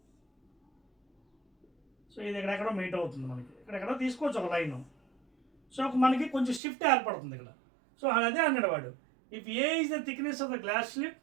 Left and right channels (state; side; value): drops out; left; at 6.6 s